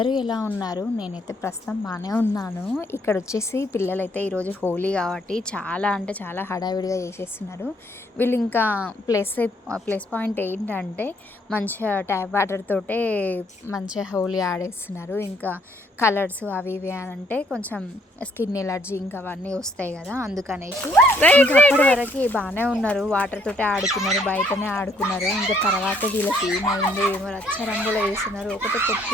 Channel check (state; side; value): normal; both; correlation 0.67